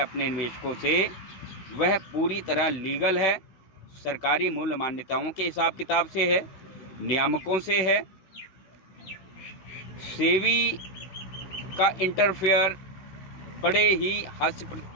निवेशकों से, वह पूरी तरह लीगल है, सरकारी मूल्य मान्यताओं के हिसाब किताब से है, नियामकों से है। सेवी का इंटरफेयर बड़े ही हास्य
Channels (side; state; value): right; late; 16 ms